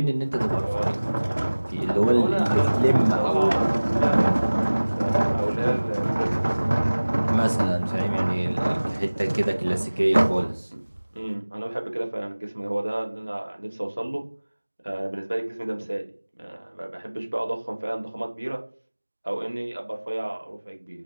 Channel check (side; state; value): both; inverted; correlation -1.00